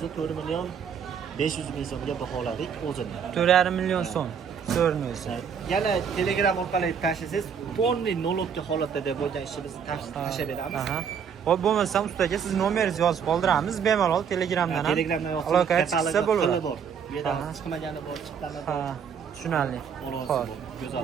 4 million 500 ming so'mga baholadik o'zini. 4,5 million so'm. So'rni o'zi. Yana Telegram orqali tashlasangiz, polniy nolobga holatda deb bo'lgan ishimizni tashlab beramiz. Aha. Xo'p, bo'lmasa ustaga siz nomeringizni yozib qoldiramiz, bemalol Telegramdan ham Telegramdan aloqaga chiqsa bo'laveradi. bor. Bu yerda Aha. chiqmagani bor, chiqqani bor. Ha, tushunarli. Xo'p, Xo'p.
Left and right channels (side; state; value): left; quieter; 7.2 dB